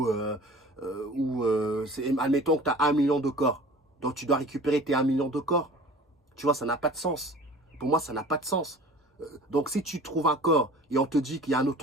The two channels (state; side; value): normal; both; correlation 0.44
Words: où, admettons que tu as 1 million de corps. Donc, tu dois récupérer tes 1 million de corps. Tu vois, ça n'a pas de sens. Pour moi, ça n'a pas de sens. Donc, si tu trouves un corps et on te dit qu'il y a un